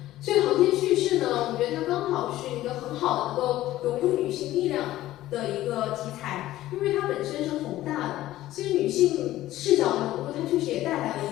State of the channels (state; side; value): quieter; right; 15.1 dB